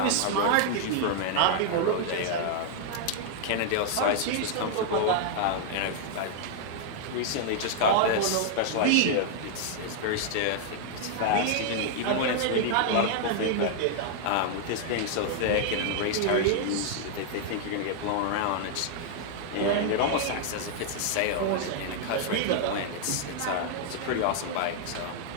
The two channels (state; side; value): different; both; correlation -0.01